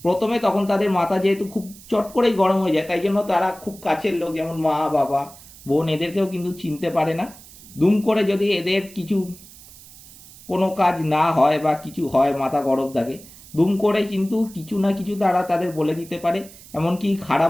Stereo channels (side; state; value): right; noise; hiss, 20 dB below the sound